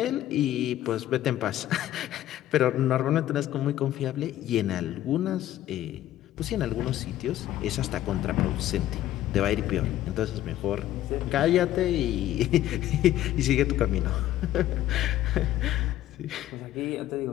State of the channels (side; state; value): right; quieter; 13.3 dB